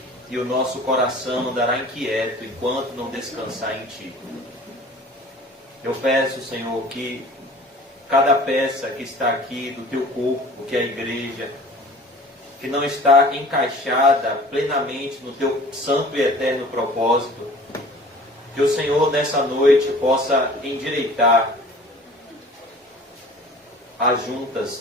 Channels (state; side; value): normal; both; correlation 0.46